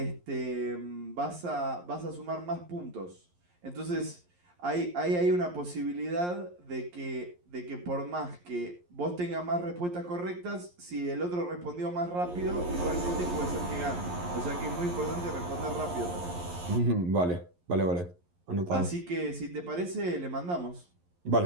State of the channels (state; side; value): late; left; 11 ms